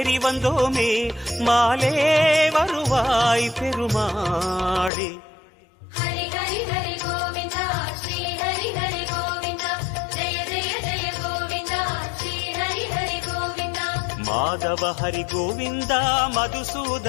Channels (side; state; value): right; drops out; at 4.9 s